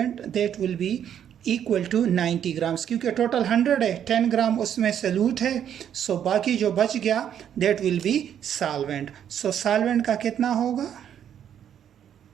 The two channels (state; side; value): quieter; left; 9.4 dB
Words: that will be equal to 90 grams. क्योंकि टोटल 100 है, 10 ग्राम उसमें सल्यूट है, सो बाकी जो बच गया that will B solvent. So solvent का कितना होगा,